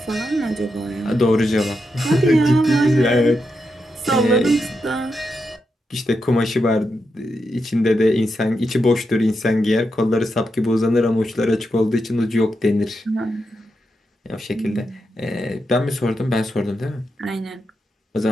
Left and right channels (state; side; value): normal; both; correlation 0.85